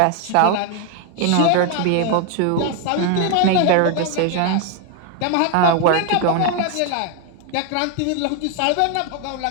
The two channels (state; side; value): different; both; correlation 0.01